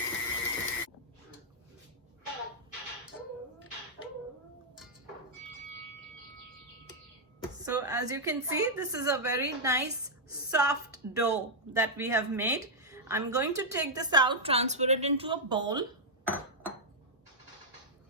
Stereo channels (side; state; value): both; normal; correlation -0.05